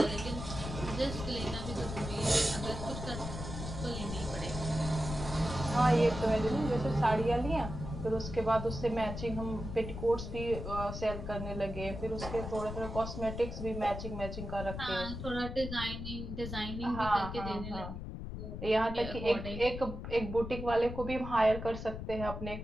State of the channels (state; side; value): noise; left; rumble, 7 dB below the sound